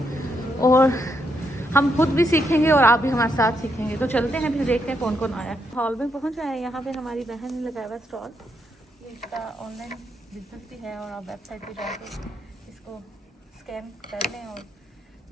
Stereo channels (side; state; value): both; normal; correlation 0.78